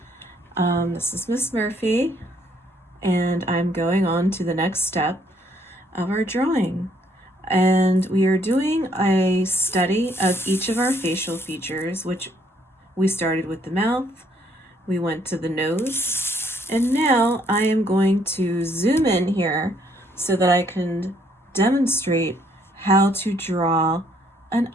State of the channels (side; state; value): both; normal; correlation 0.67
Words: this is Miss Murphy, and I'm going on to the next step of our drawing. And we are doing a study of each of our facial features, which we started with the mouth, we went to the nose, and now I am going to zoom in here so that I can demonstrate how to draw an